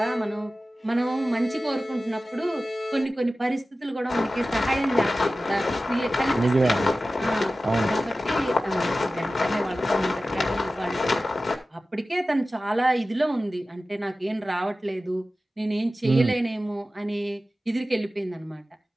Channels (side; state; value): both; normal; correlation 0.95